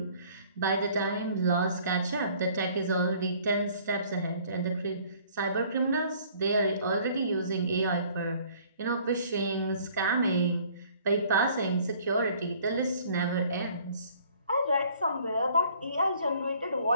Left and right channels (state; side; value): inverted; both; correlation -0.56